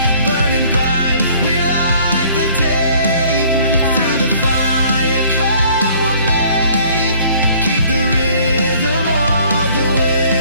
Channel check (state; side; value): inverted; both; correlation -0.56